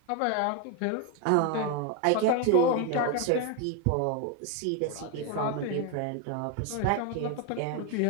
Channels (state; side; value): different; both; correlation 0.02